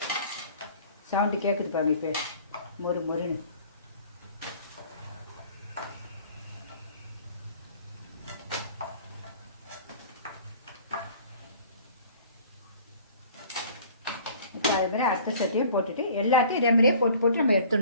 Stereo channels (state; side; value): inverted; both; correlation -0.49